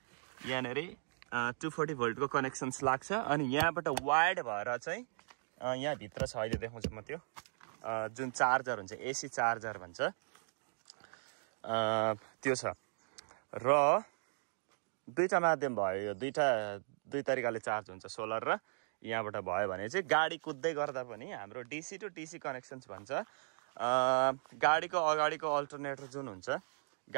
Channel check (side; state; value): left; silent; digital silence